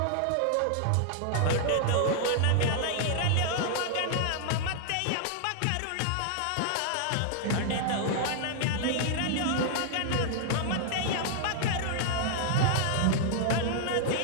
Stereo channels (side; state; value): both; different; correlation -0.01